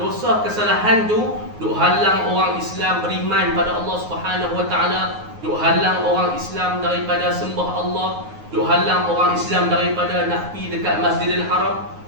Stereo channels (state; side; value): late; left; 9.5 ms